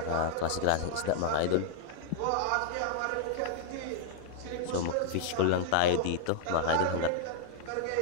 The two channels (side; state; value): both; different; correlation -0.01